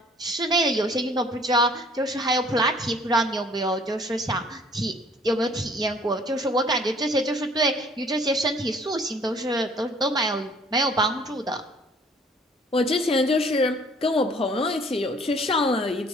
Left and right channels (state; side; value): normal; both; correlation 0.56